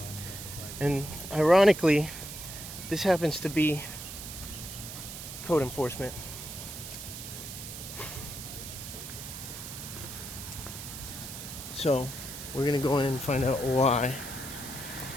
And ironically, this happens to be code enforcement. So we're gonna go in and find out why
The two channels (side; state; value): right; noise; hiss, 10 dB below the sound